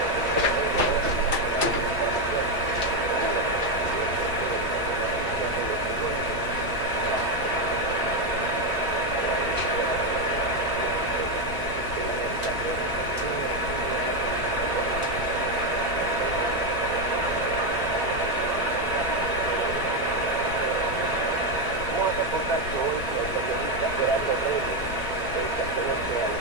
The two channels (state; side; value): normal; both; correlation 0.06